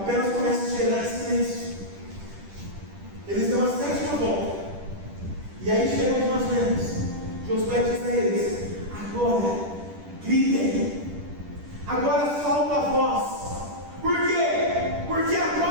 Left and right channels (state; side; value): late; left; 10 ms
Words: comece a gerar silêncio. Eles dão a 7ª volta. E aí chegou onde nós vemos. Josué diz a eles: agora gritem. Agora solta a voz. Por quê? Porque